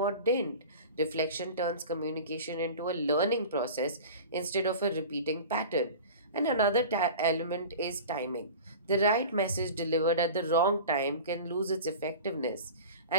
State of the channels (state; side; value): inverted; both; correlation -0.36